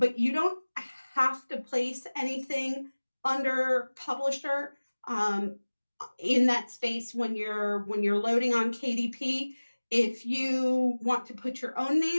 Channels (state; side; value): inverted; both; correlation -1.00